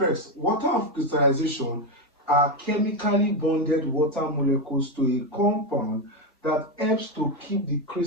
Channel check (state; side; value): normal; both; correlation 0.09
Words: water of crystallization are chemically bonded water molecules to a compound that helps to keep the